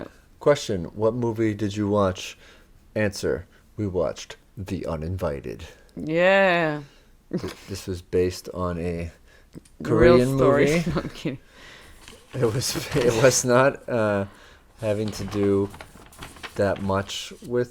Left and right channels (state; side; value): identical; both; correlation 1.00